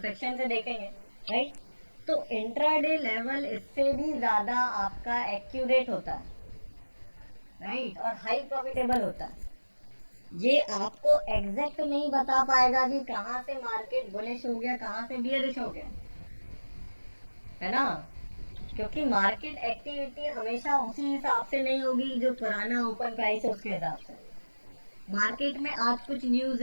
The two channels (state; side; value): inverted; both; correlation -1.00